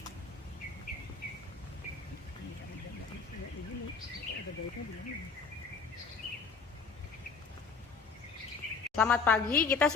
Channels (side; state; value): right; quieter; 5.0 dB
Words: Selamat pagi, kita